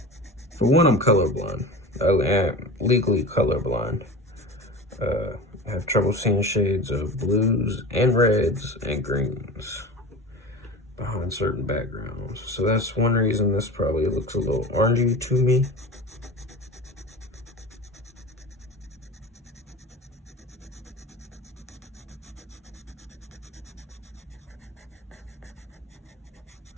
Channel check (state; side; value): normal; both; correlation 0.32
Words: For one, I'm colorblind. I am legally colorblind. I have trouble seeing shades of blues and reds and greens behind certain backgrounds. So that's one reason this probably looks a little orangey to me.